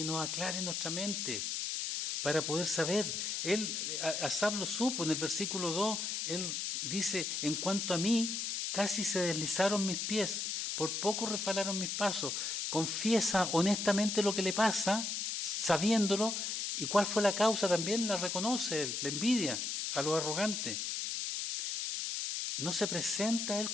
nos aclare nuestra mente para poder saber. Asaf lo supo en el versículo 2, él dice: en cuanto a mí, casi se deslizaron mis pies, por poco resbalaron mis pasos. Confiesa honestamente lo que le pasa, sabiéndolo, y cuál fue la causa también la reconoce él, la envidia a los arrogantes. No se presenta a él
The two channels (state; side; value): noise; left; hiss, 2 dB below the sound